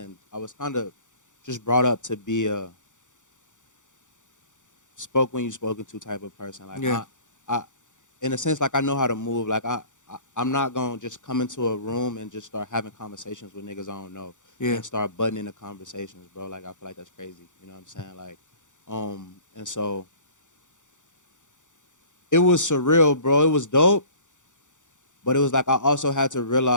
just brought up to be a spoke when you spoken to type of person. Like, Yeah. I in a sense, like I know how to move. Like I'm not gonna just come into a room and just start having conversations with niggas I don't know. Yeah. And start butting into conversations, bro. Like I feel like that's crazy. You know what I'm saying? Like, and so it was surreal, bro. It was dope. But it was like I also had to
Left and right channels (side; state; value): right; late; 0.86 ms